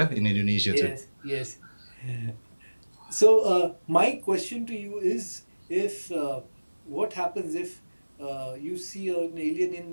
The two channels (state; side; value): inverted; both; correlation -1.00